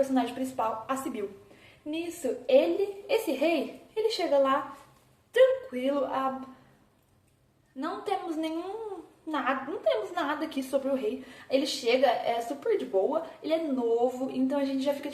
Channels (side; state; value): both; identical; correlation 1.00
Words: principal, a Sibyl. Nisso, esse rei, ele chega lá tranquilo, não temos nada aqui sobre o rei. Ele chega, é super de boa, ele é novo, então a gente já fica